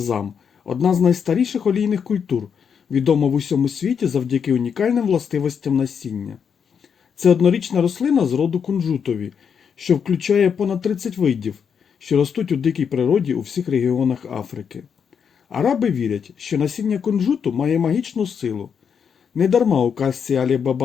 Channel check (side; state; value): right; quieter; 7.0 dB